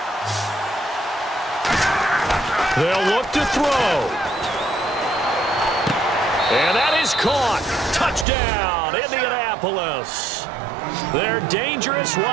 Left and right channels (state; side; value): drops out; left; at 8.2 s